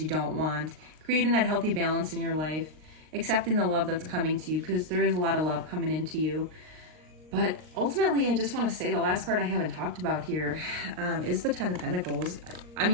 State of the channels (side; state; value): left; late; 39 ms